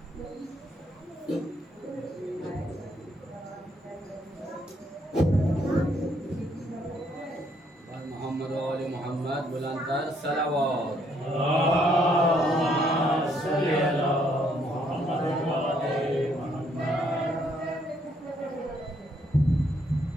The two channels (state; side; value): normal; both; correlation 0.70